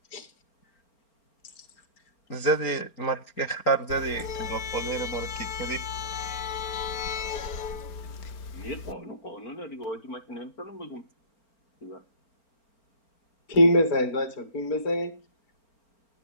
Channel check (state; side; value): late; right; 4.4 ms